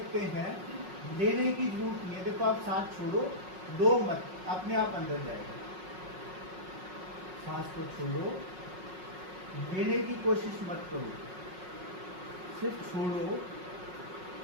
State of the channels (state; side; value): late; left; 5.4 ms